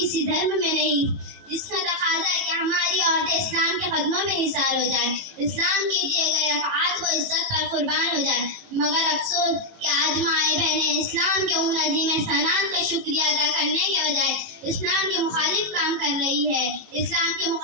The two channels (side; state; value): left; late; 18 ms